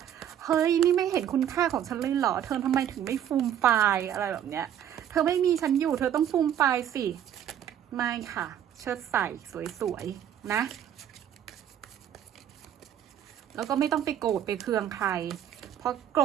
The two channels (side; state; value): left; quieter; 10.1 dB